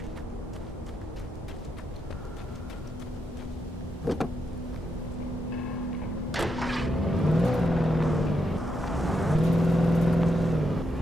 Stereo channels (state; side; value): normal; both; correlation 0.82